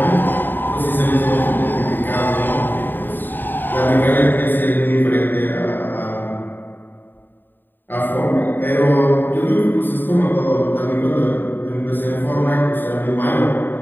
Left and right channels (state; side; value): late; right; 0.093 ms